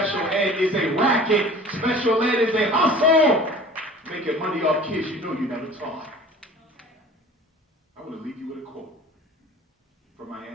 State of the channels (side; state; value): both; normal; correlation 0.44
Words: ed is a racket. Special ed is a hustle. Making money off kids you know you never taught. I want to leave you with a quote from my